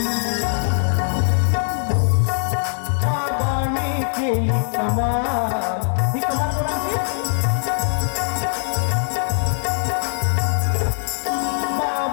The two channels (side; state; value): right; silent; digital silence